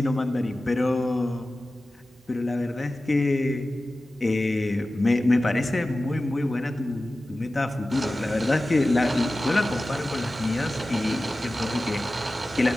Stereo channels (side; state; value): both; normal; correlation 0.95